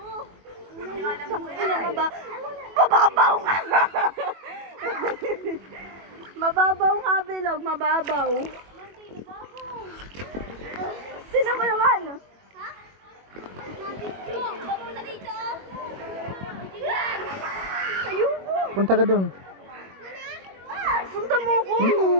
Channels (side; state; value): left; late; 21 ms